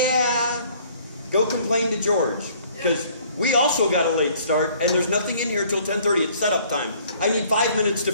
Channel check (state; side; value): inverted; both; correlation -0.58